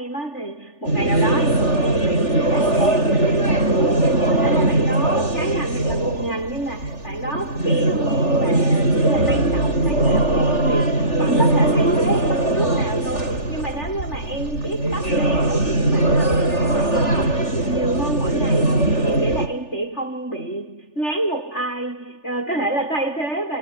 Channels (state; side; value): late; right; 3.4 ms